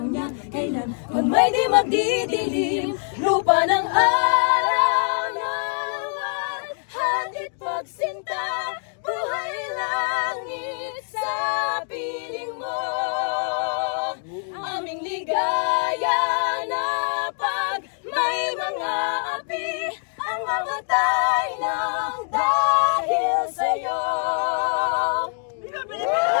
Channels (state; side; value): silent; right; 60 dB below the other